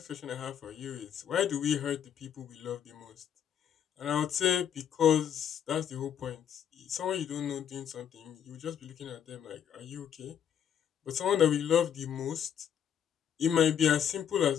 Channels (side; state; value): right; quieter; 9.0 dB